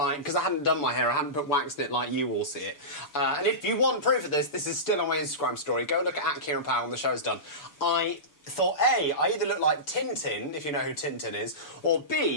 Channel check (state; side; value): late; right; 6.9 ms